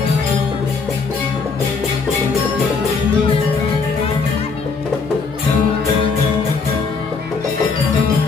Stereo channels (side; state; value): right; quieter; 4.7 dB